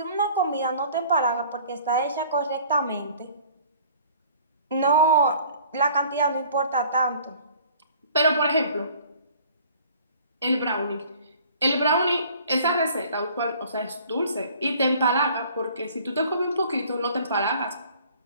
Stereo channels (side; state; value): both; inverted; correlation -0.52